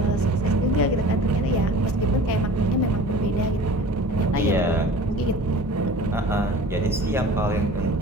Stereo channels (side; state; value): both; normal; correlation 0.41